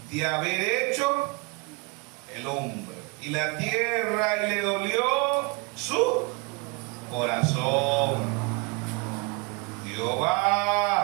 de haber hecho el hombre y la tierra, y le dolió su corazón.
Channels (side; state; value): left; quieter; 29.5 dB